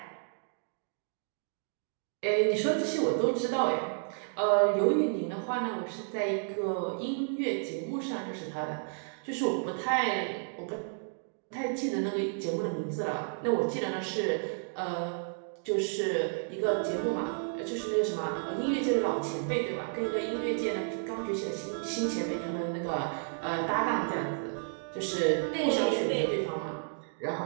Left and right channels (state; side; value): silent; left; digital silence